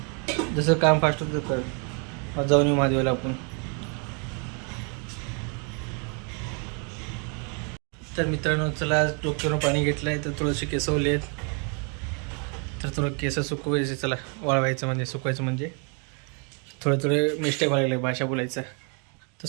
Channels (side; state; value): left; quieter; 37.3 dB